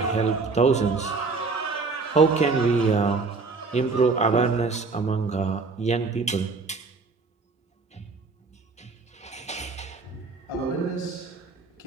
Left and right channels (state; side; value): quieter; left; 4.2 dB